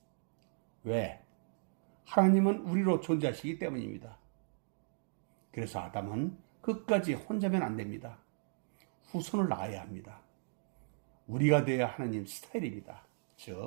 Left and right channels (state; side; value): silent; left; digital silence